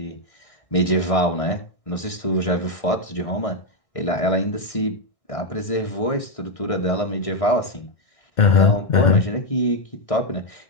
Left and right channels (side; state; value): right; late; 1.6 ms